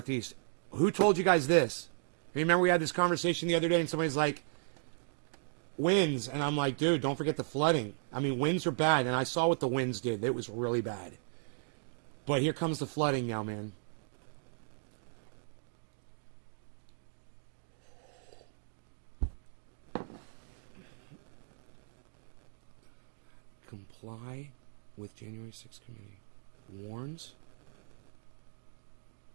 Who told you guys this? Remember we had this conversation the other day, and somebody's like, winds. And I'm like, dude, don't forget the flooding. I mean, winds are bad, and I saw what the winds did. It was really bad. But here comes the flooding now, man. Comply with January 6th committee. Warns?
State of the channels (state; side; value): silent; left; digital silence